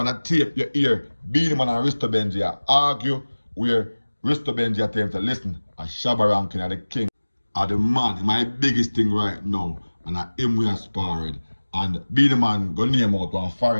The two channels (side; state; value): both; inverted; correlation -1.00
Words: a tape you hear Beenieman and Risto Benji argue, where Risto Benji attempts to listen, a Shabba ranking of the king are the man, my biggest thing right now, and I him we aspired. And Beenieman go name out one